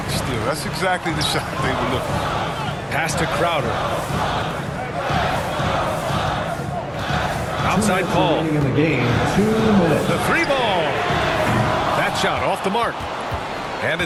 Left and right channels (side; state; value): both; identical; correlation 1.00